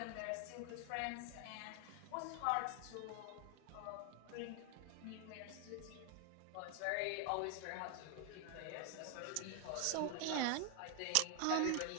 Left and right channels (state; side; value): different; both; correlation 0.00